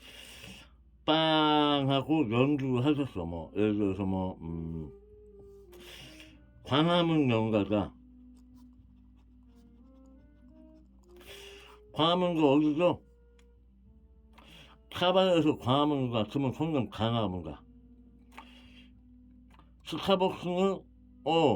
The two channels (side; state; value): both; identical; correlation 1.00